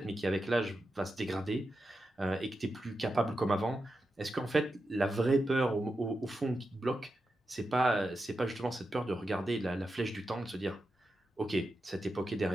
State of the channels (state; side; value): normal; both; correlation 0.89